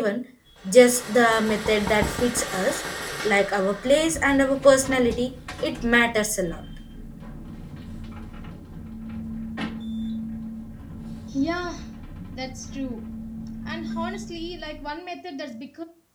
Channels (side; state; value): both; identical; correlation 1.00